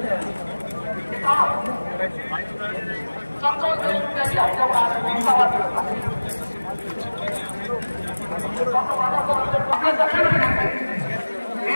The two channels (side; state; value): both; inverted; correlation -1.00